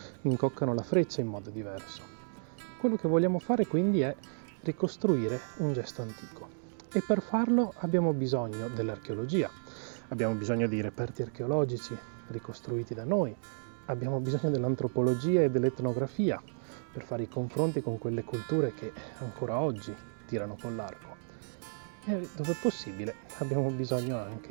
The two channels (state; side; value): silent; left; digital silence